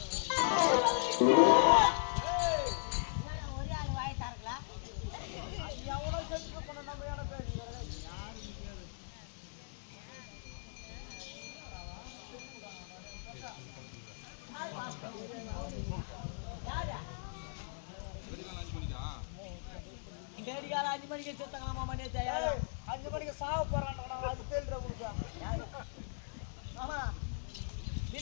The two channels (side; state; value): right; silent; digital silence